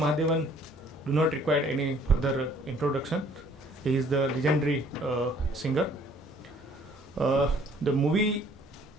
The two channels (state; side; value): normal; both; correlation 0.58